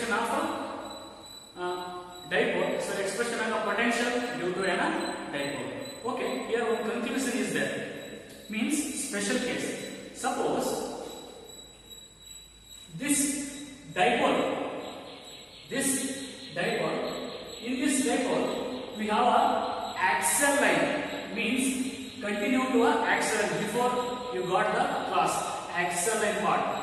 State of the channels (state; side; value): identical; both; correlation 1.00